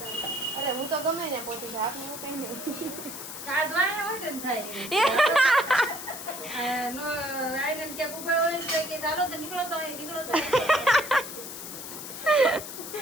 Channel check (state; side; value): noise; left; hiss, 9 dB below the sound